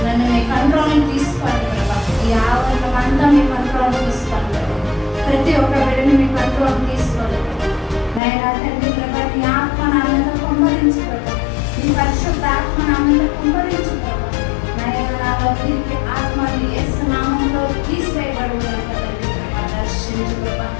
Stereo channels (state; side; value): drops out; right; at 8.2 s